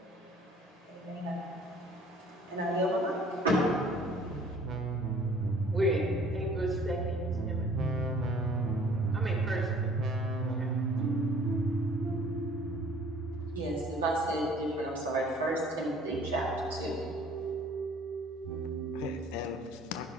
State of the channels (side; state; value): both; normal; correlation 0.54